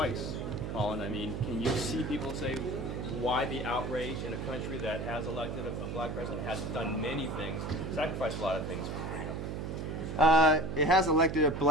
Colin. I mean, can you see people say why the outrage in a country that has elected a black president, has done many things, sacrificed a lot of things for freedom? It has elected a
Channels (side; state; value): right; noise; hum, 5 dB below the sound